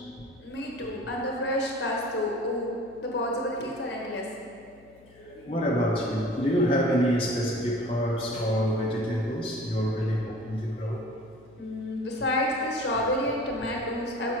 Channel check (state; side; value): noise; left; hum, 26 dB below the sound